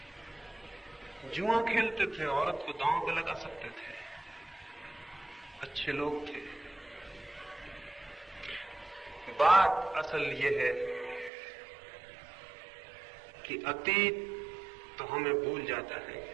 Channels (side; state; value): left; drops out; at 11.3 s